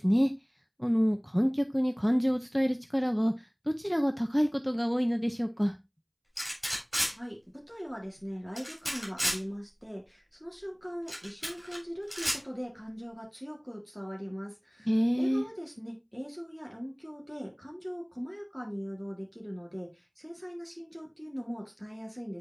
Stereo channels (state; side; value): identical; both; correlation 1.00